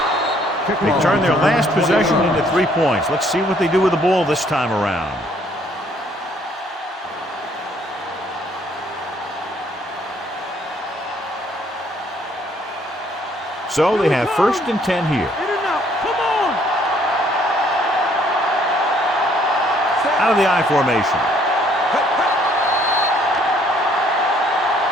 They turn their last possession into 3 points. Let's see what they do with the ball this time around. So they have 1st and 10 here. Out of the I formation.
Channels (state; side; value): normal; both; correlation 0.64